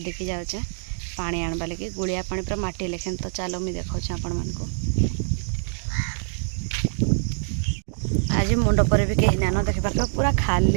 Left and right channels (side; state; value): left; silent; 62 dB below the other